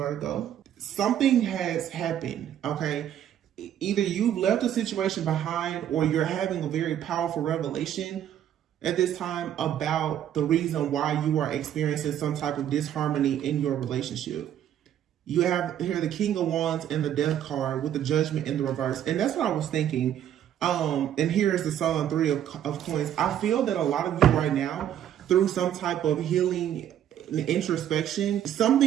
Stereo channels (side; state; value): left; quieter; 10.5 dB